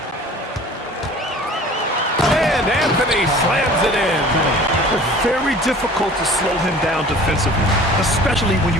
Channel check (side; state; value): both; normal; correlation 0.45